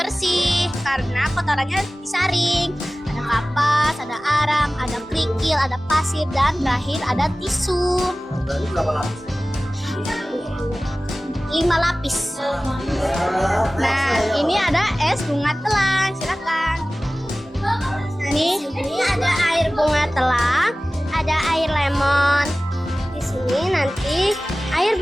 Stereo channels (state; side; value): normal; both; correlation 0.97